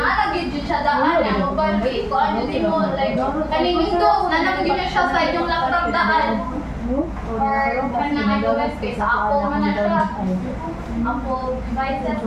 jud siya daan ang uban kay kuan jud mo like kaning Windows nalagid na siya sa inyong laptop daan. Or kanang iOS kay sa Apple man na siya. Apple devices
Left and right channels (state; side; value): identical; both; correlation 1.00